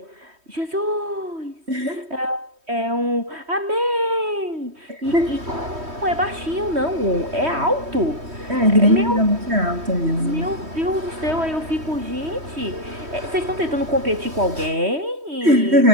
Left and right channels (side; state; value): left; late; 3.1 ms